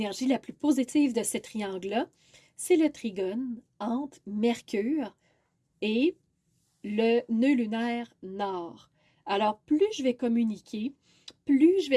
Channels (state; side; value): identical; both; correlation 1.00